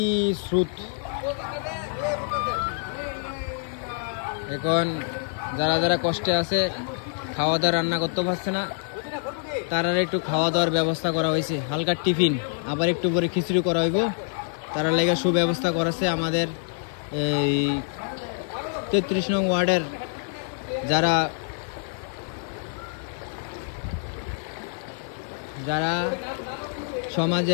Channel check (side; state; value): right; silent; digital silence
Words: স্রোত। এখন যারা যারা কষ্টে আছে, খাওয়া দাওয়া রান্না করতে পারছে না, তারা একটু খাওয়া দাওয়ার ব্যবস্থা করা হয়েছে। হালকা টিফিন, আবার একটু পরে খিচুড়ি করা হইব। তারা লেগে সুব্যবস্থা করেছে আমাদের এই 33 নং ওয়ার্ডের যারা যারা